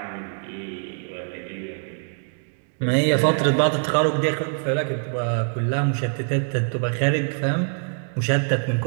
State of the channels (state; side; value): silent; left; 61 dB below the other